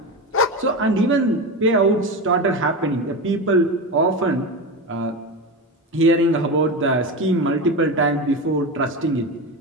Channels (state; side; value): normal; both; correlation 0.21